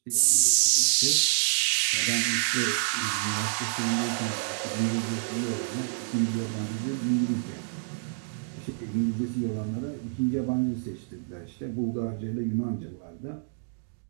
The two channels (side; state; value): left; silent; digital silence